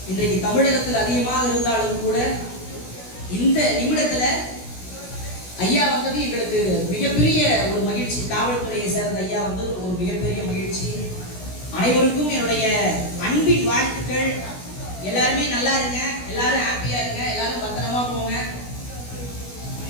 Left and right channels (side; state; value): right; late; 16 ms